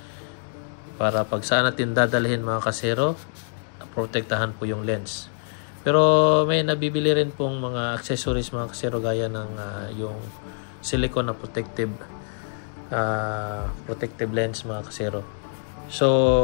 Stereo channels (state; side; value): silent; right; digital silence